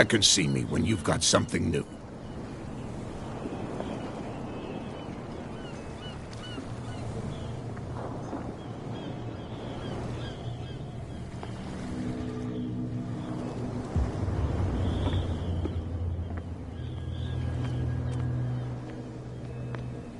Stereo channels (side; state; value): both; identical; correlation 1.00